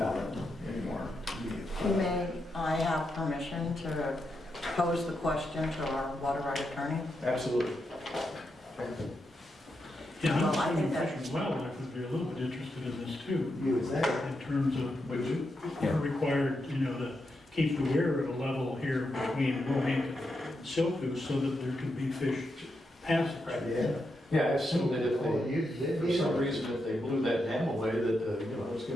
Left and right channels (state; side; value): normal; both; correlation 0.84